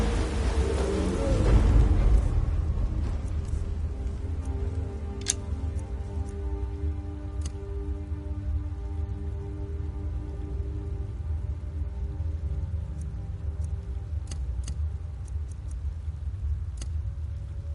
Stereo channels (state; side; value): identical; both; correlation 1.00